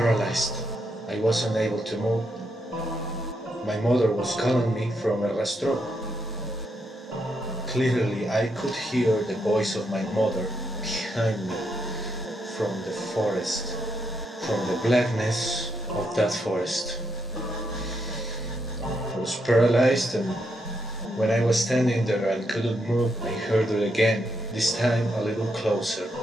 I wasn't able to move. My mother was calling me from El Rastrojo. Clearly, I could hear the voice of my mother behind me from the forest, from the blackness of that forest. I was paralyzed, and when I was standing there and couldn't move, I heard it again, this time a little closer.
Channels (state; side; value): normal; both; correlation 0.82